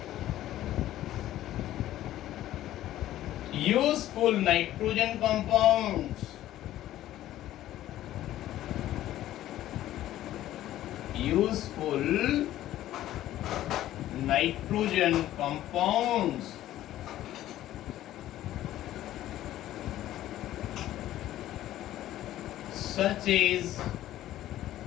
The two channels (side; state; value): right; quieter; 13.6 dB